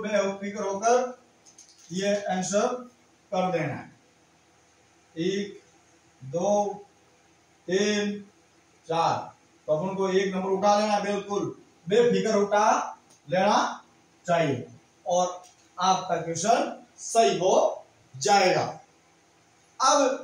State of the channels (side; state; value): both; identical; correlation 1.00